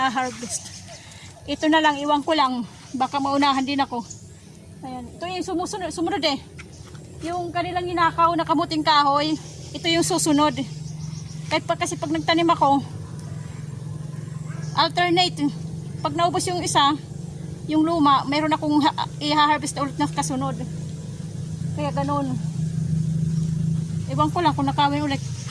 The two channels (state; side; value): identical; both; correlation 1.00